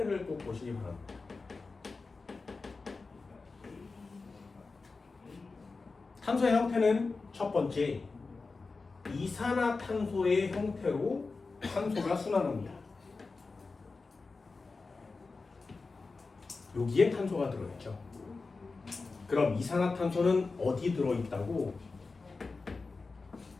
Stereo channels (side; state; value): right; quieter; 4.0 dB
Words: 꼭 보시기 바랍니다. 탄소의 형태는 첫 번째 이산화탄소의 형태로 탄소가 순환합니다. 여기에 탄소가 들어있죠. 그럼 이산화탄소는 어디 들어있다고?